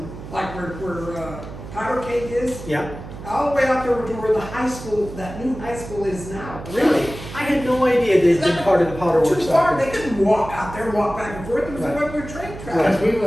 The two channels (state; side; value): noise; right; hum, 12 dB below the sound